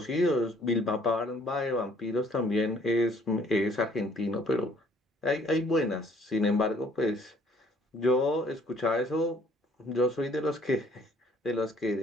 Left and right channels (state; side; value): normal; both; correlation 0.60